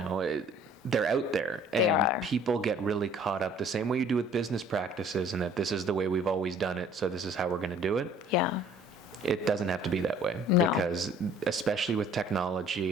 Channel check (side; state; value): both; normal; correlation 0.54